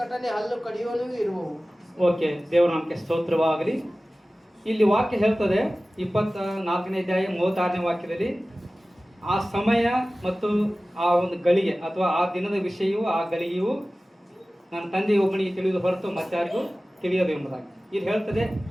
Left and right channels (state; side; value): normal; both; correlation 0.97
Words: ಹಲ್ಲು ಕಡಿಯುವನು ಇರುವವು. ಓಕೆ, ದೇವರ ನಾಮಕ್ಕೆ ಸ್ತೋತ್ರವಾಗಲಿ. ಇಲ್ಲಿ ವಾಕ್ಯ ಹೇಳ್ತದೆ 24ನೇ ಅಧ್ಯಾಯ 36ನೇ ವಾಕ್ಯದಲ್ಲಿ ಆ ಸಮಯ ಮತ್ತು ಆ ಒಂದು ಗಳಿಗೆ ಅಥವಾ ಆ ದಿನದ ವಿಷಯವೂ ಆ ಗಳಿಗೆಯೂ ನನ್ನ ತಂದೆ ಒಬ್ಬನಿಗೆ ತಿಳಿದು ಹೊರತು ಮತ್ತಾರಿಗೂ ತಿಳಿಯದು ಎಂಬುದಾಗಿ ಇಲ್ಲಿ ಹೇಳ್ತದೆ.